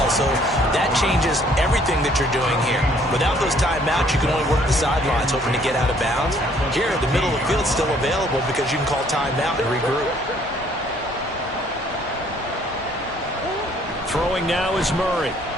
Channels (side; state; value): both; normal; correlation 0.62